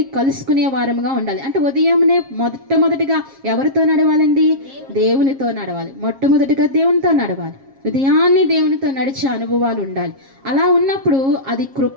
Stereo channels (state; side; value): late; left; 7.4 ms